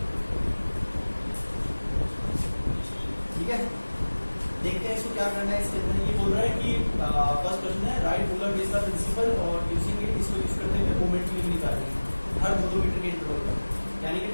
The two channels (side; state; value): both; inverted; correlation -1.00